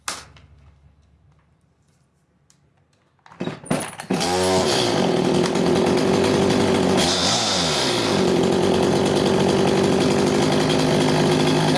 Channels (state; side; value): identical; both; correlation 1.00